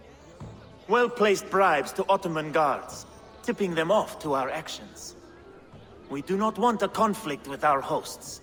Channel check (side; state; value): both; identical; correlation 1.00